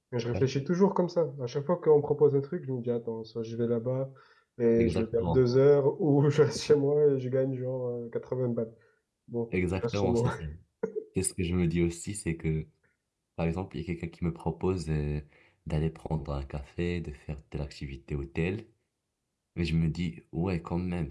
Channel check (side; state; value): both; identical; correlation 1.00